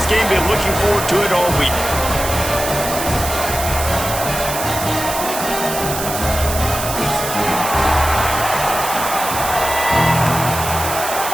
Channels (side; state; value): right; noise; hiss, 6 dB below the sound